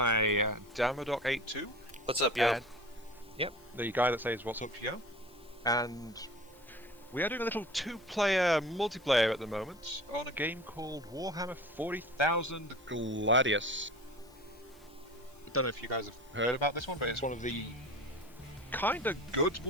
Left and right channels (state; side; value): noise; left; hiss, 28 dB below the sound